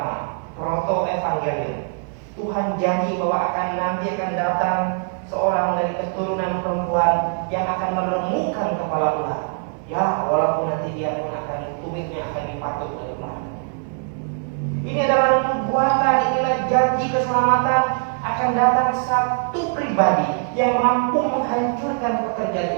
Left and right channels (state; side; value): silent; left; 57 dB below the other